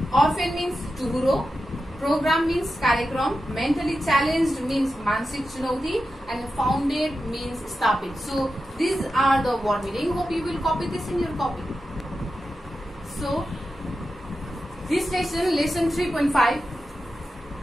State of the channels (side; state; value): both; normal; correlation 0.91